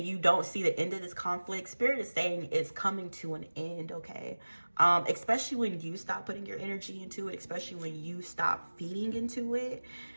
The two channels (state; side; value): inverted; both; correlation -1.00